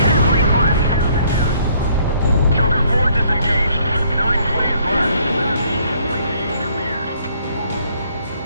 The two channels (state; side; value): inverted; both; correlation -0.64